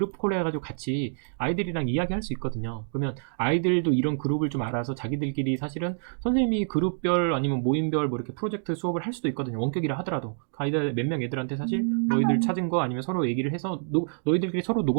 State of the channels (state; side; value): silent; left; digital silence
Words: 콜 해가지고 같이 아이들이랑 이야기할 수 있거든요. 그러면 아이들도 이런 그룹을 좀 알아서 자기들끼리 사실은 선생님이 그룹별 아니면 모임별 뭐 이렇게 프로젝트 수업을 할 수도 있거든요. 원격이라 하더라도 아이들 몇 명 애들한테 사실 너희들 찾은 거 아니면 서로 얘기를 해서 너희들끼리 서로